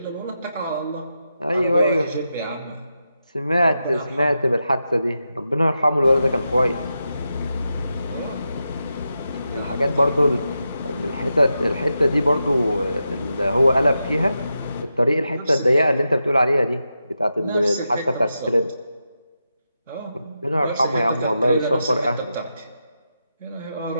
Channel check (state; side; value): inverted; both; correlation -0.88